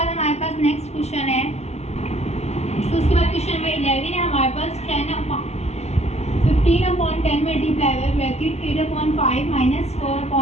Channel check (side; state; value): right; late; 0.31 ms